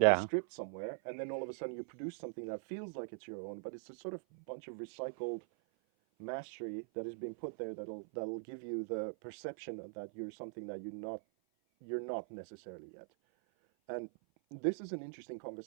of a script somewhere, and then all of a sudden you produce something that feels like it's your own, but it's a sort of bunch of recycled mastery that is being put there that'll give you the perception that you're something that you're not necessarily yet. And this is an interesting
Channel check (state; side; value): silent; left; 50 dB below the other